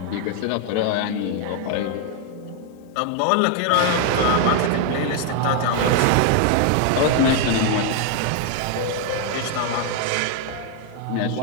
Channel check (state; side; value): different; both; correlation 0.00